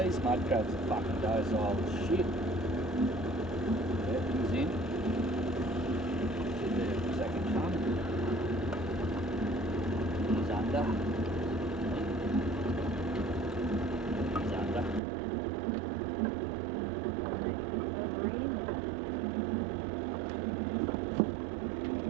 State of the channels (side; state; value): left; drops out; at 15.0 s